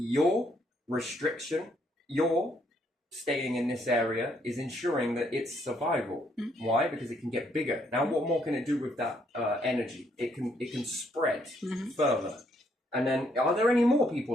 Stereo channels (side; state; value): both; normal; correlation 0.71